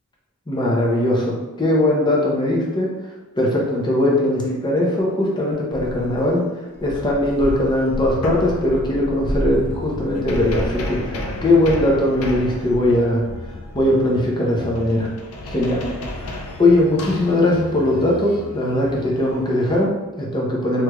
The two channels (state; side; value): normal; both; correlation 0.57